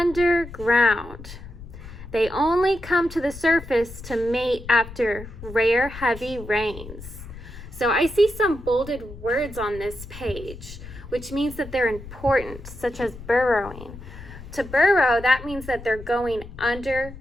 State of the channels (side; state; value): left; noise; rumble, 14 dB below the sound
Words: They only come to the surface to mate after rare heavy rains. So I see some bolded words on this page, which means that they're important, such as burrowing. To burrow, that means that they're going